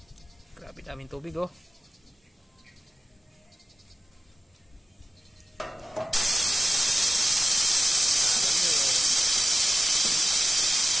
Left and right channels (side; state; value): both; normal; correlation 0.96